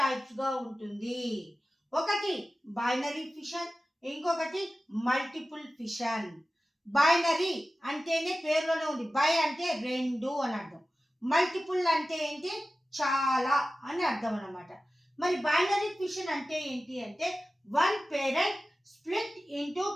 గా ఉంటుంది. ఒకటి బైనరీ ఫిషన్, ఇంకొకటి మల్టిపుల్ ఫిషన్. బైనరీ అంటేనే పేరులోనే ఉంది, బై అంటే రెండు అని అర్థం, మల్టిపుల్ అంటే ఏంటి చాలా అని అర్థం అన్నమాట. మరి బైనరీ ఫిషన్ అంటే ఏంటి అంటే one parent split into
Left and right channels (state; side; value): normal; both; correlation 0.95